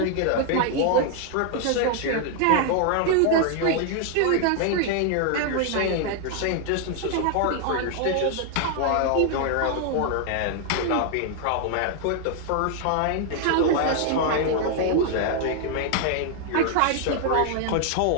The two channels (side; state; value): both; different; correlation 0.00